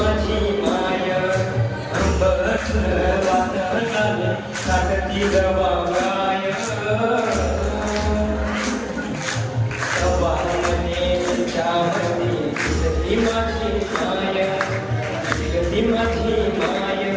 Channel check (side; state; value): both; identical; correlation 1.00